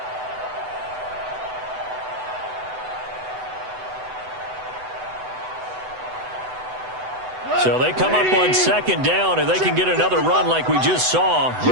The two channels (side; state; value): left; late; 8.0 ms